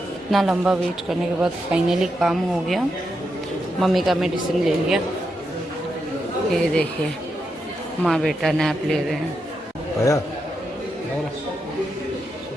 इतना लंबा वेट करने के बाद फाइनली काम हो गया। मम्मी का मेडिसिन ले लिया। ये देखिए माँ बेटा नैप ले रहे हैं।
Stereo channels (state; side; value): normal; both; correlation 0.84